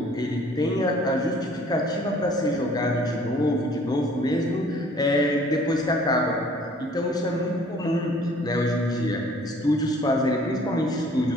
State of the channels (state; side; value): normal; both; correlation 0.55